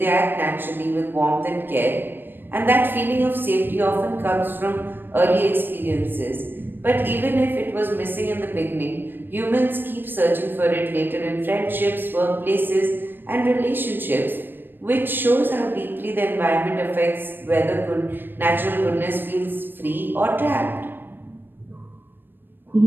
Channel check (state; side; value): late; left; 0.096 ms